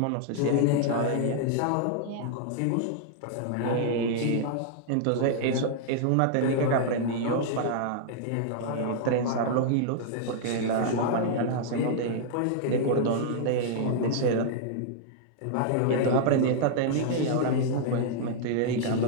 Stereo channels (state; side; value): different; both; correlation -0.01